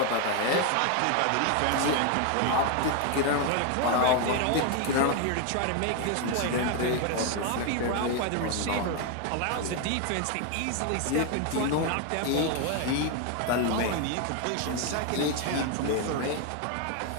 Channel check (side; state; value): both; different; correlation 0.01